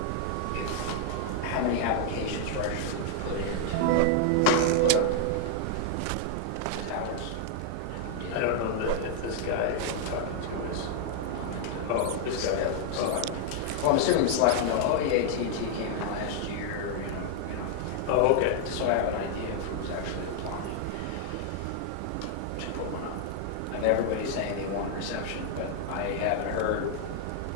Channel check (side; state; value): both; different; correlation 0.00